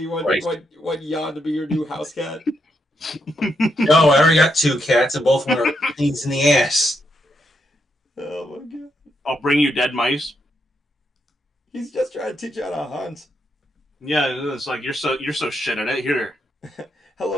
want Jan to be your new house cat. No, I already got 2 cats, and both of them are things in the ass. Oh my god! I'll bring you dead mice. He's just trying to teach you how to hunt. Yeah, it's like you're so shit at it. Here.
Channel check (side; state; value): both; normal; correlation 0.80